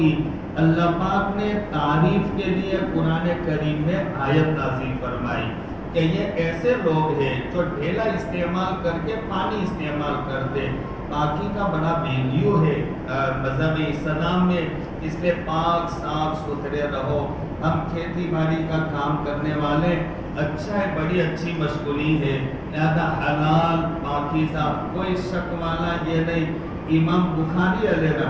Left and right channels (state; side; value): identical; both; correlation 1.00